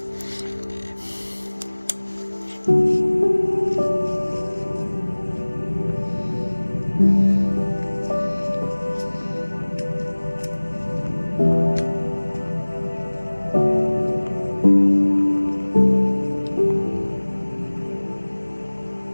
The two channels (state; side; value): inverted; both; correlation -1.00